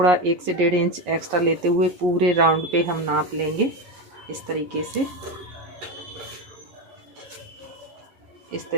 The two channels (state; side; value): late; left; 11 ms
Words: 1 से 1.5 इंच एक्स्ट्रा लेते हुए पूरे राउंड पे हम नाप लेंगे। इस तरीके